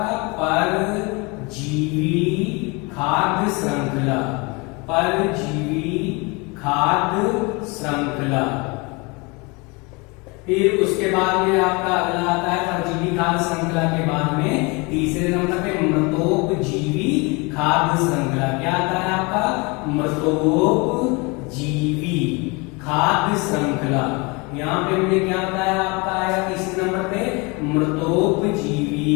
परजीवी खाद्य श्रृंखला। परजीवी खाद्य श्रृंखला। फिर उसके बाद में आपका अगला आता है परजीवी खाद्य श्रृंखला के बाद में तीसरे नंबर पे मृतोपजीवी खाद्य श्रृंखला। क्या आता है आपका? मृतोपजीवी खाद्य श्रृंखला। यहाँ पे हमने क्या बताया? आपका आया तीसरे नंबर पे मृतोपजीवी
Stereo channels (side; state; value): right; quieter; 28.0 dB